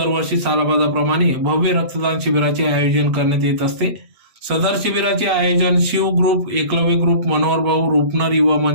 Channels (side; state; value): left; late; 8.1 ms